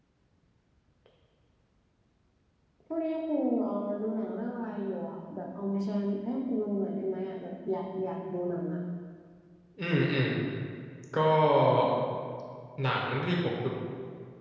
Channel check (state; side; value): identical; both; correlation 1.00